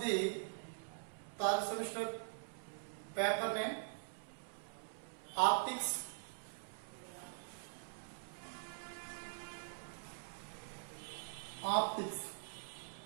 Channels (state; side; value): silent; left; digital silence